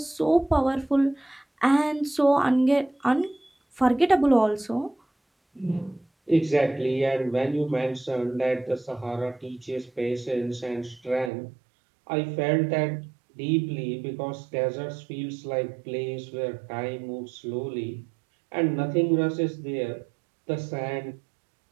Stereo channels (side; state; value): left; drops out; at 11.3 s